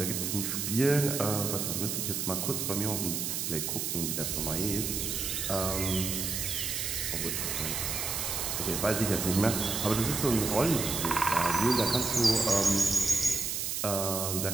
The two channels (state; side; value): noise; right; hiss, 2 dB below the sound